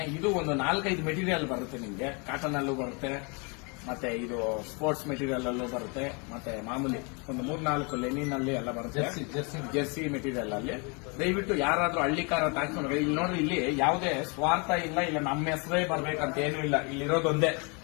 ಇದು ಒಂದು 4-5 ಮೆಟೀರಿಯಲ್ ಬರುತ್ತೆ ನಿಮ್ಗೆ. ಕಾಟನ್ ಅಲ್ಲೂ ಬರುತ್ತೆ, ಮತ್ತೆ ಇದು ಸ್ಪೋರ್ಟ್ಸ್ ಮೆಟೀರಿಯಲ್ ಅಲ್ಲೂ ಬರುತ್ತೆ, ಮತ್ತೆ ಮಾಮೂಲಿ ಒಂದು 3-4 ಲೆನಿನ್ ಅಲ್ಲಿ ಎಲ್ಲ ಬರುತ್ತೆ. ಜೆರ್ಸಿ ಮೆಟೀರಿಯಲ್ ಅಲ್ಲಿ ದಯವಿಟ್ಟು ಯಾರಾದ್ರೂ ಹಳ್ಳಿ ಕಾರ ಹಾಕೊಂಡು ಇಲ್ಲಿ ನೋಡ್ರಿ, ಇಲ್ಲಿ ಯಾವುದೇ ಸ್ವಾರ್ಥ ಇಲ್ಲ, ಇಲ್ಲ ನಮ್ಮ ಹೆಸರೇ ಬರ್ಬೇಕಂತ ಏನೂ ಇಲ್ಲ. ಇಲ್ಲಿರೋದೊಂದೇ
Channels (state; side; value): quieter; right; 32.8 dB